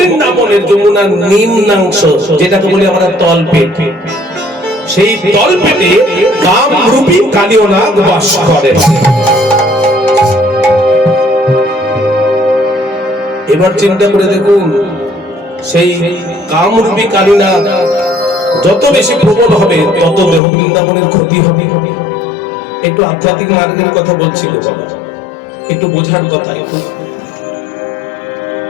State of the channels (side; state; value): right; drops out; at 20.4 s